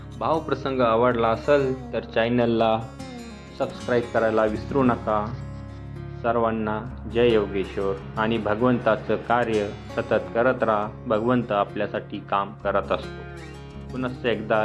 भावप्रसंग आवडला असेल तर चॅनलला सबस्क्राईब करायला विसरू नका. सर्वांना जय योगेश्वर. आणि भगवंताचं कार्य सतत करत राहा. भगवंत आपल्यासाठी काम करत असतो. पुनश्च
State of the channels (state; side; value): identical; both; correlation 1.00